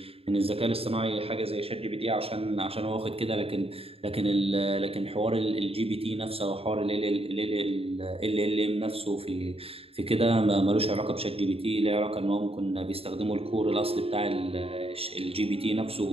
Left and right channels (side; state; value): left; late; 0.28 ms